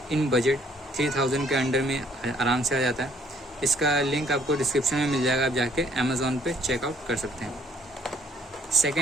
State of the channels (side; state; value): both; normal; correlation 0.63